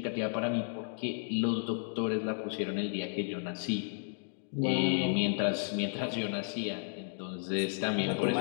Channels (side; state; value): right; silent; digital silence